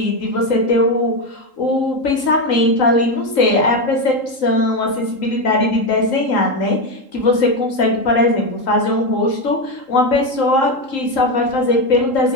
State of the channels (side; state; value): right; late; 3.8 ms